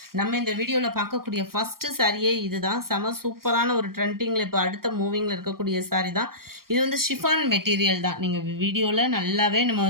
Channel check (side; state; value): left; late; 0.93 ms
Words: நம்ம இந்த வீடியோவில் பார்க்கக்கூடிய ஃபஸ்ட்டு சாரியே இது தான். செம சூப்பரான ஒரு ட்ரெண்டிங்கில் இப்போ அடுத்த மூவிங்கில் இருக்கக்கூடிய சாரி தான். இது வந்து ஷிஃபான் மெட்டீரியல் தான். நீங்கள் வீடியோவில் நல்லாவே நம்ம